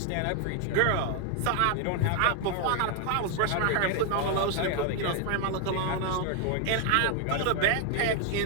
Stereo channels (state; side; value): different; both; correlation 0.00